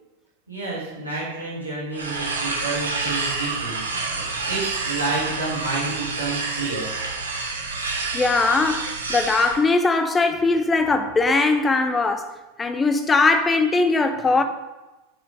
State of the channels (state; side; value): normal; both; correlation 0.52